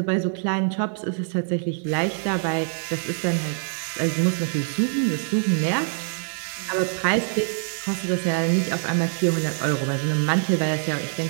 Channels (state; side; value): silent; left; 62 dB below the other